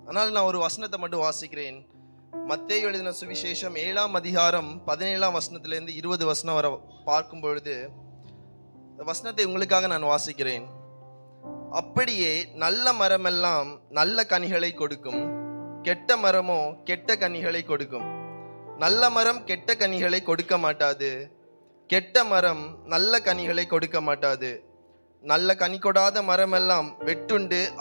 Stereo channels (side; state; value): both; inverted; correlation -1.00